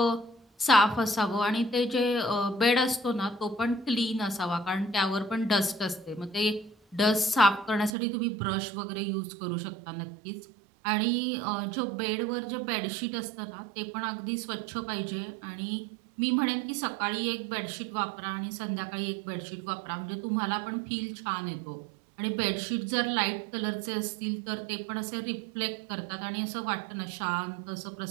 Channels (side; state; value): left; drops out; at 8.0 s